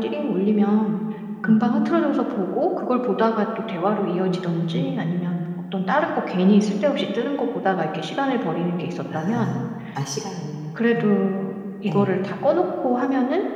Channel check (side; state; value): both; identical; correlation 1.00